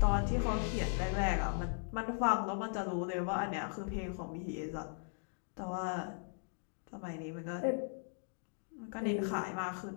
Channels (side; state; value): right; silent; digital silence